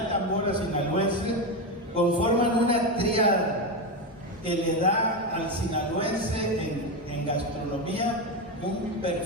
tambora sinaloense, conforman una tríada que le da al sinaloense en gastronomía un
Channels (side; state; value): both; normal; correlation 0.13